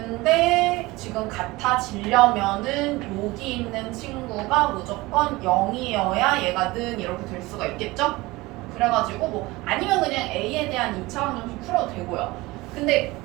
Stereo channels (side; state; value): left; quieter; 21.1 dB